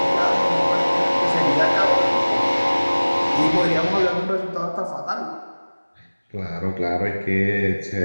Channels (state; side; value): inverted; both; correlation -1.00